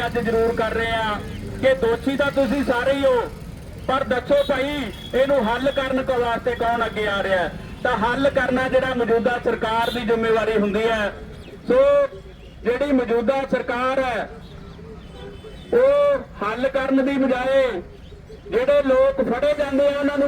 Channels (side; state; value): both; identical; correlation 1.00